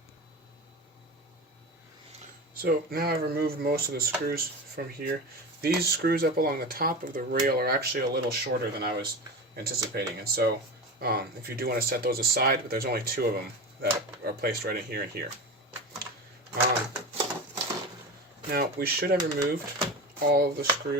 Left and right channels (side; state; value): both; normal; correlation 0.27